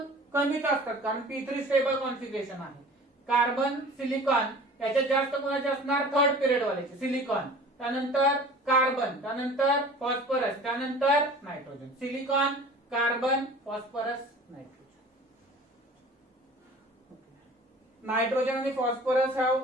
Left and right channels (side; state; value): both; normal; correlation 0.43